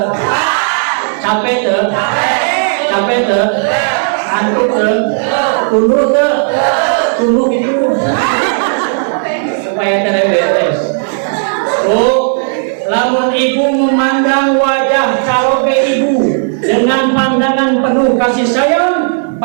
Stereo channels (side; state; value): left; silent; digital silence